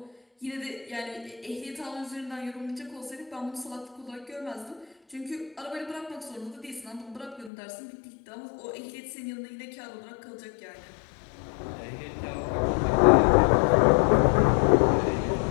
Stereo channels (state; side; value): drops out; right; at 7.5 s